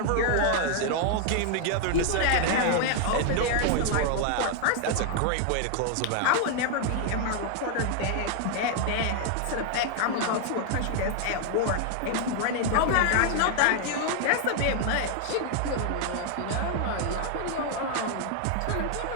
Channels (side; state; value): both; different; correlation 0.00